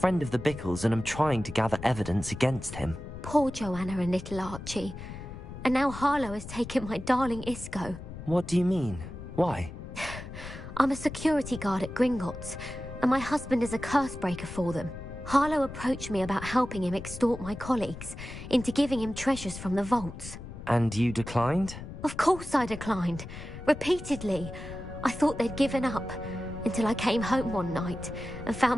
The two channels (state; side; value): noise; left; rumble, 11 dB below the sound